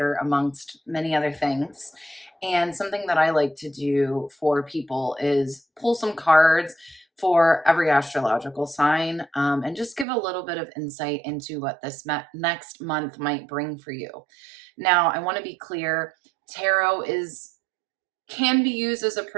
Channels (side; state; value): left; drops out; at 10.1 s